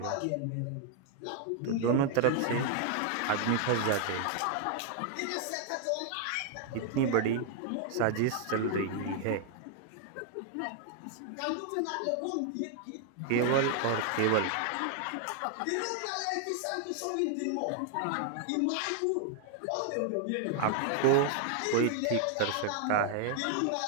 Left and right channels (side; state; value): both; different; correlation 0.00